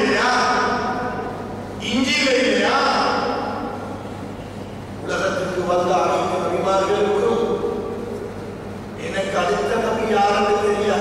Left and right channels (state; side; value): identical; both; correlation 1.00